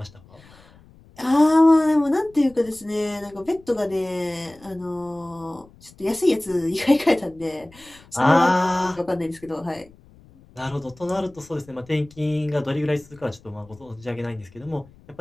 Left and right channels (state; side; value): noise; left; rumble, 25 dB below the sound